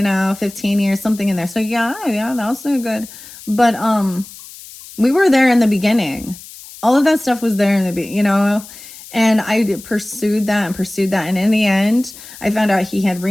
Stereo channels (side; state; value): left; noise; hiss, 17 dB below the sound